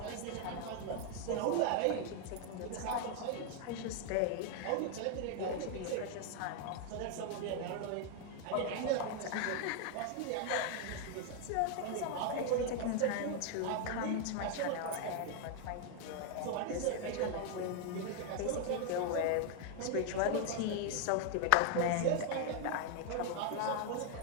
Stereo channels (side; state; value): both; different; correlation 0.00